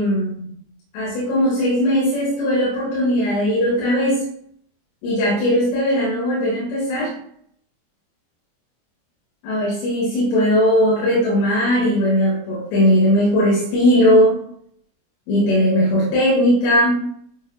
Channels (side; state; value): right; late; 25 ms